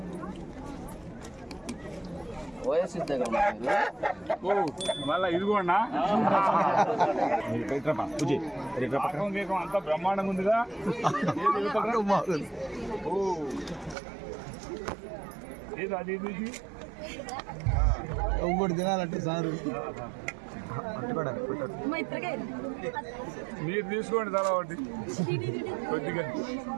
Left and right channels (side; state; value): left; drops out; at 14.0 s